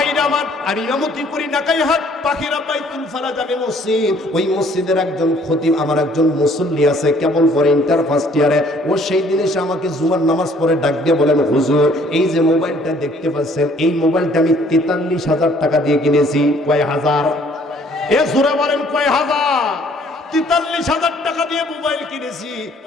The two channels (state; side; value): normal; both; correlation 0.59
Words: আমার, আমি ইমামতি করি নাকাইহাট পাখিরা বাইতুল ফারাজ আমি মসজিদ, ওই মসজিদের একজন খতিব, আমার একজন মুসল্লি আছে, কেবল পড়ে ইন্টার ফার্স্ট ইয়ারে। ও সেই দিন এসে আমাকে জুমার নামাজ পড়ে ডাক দিয়ে বলেন, হুজুর এই যে মোবাইলটা দেখতে পাচ্ছেন, এই মোবাইলটা আমি 43,000 টাকা দিয়ে কিনেছি। কয় হাজার? এ জোরে বলেন কয় হাজার? 43,000 টাকা দিয়ে মোবাইল কিনেছি।